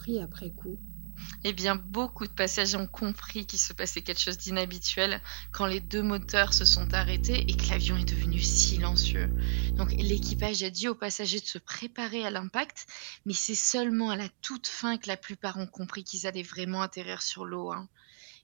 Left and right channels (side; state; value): left; silent; digital silence